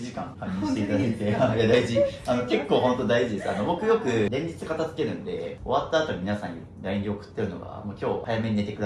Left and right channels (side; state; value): both; identical; correlation 1.00